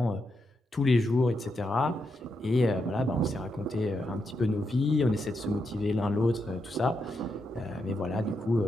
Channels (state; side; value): normal; both; correlation 0.83